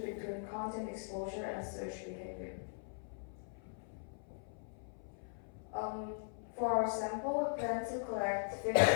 between content exposure and search behavior. For our sample, we plan to collect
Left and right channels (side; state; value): right; silent; 51 dB below the other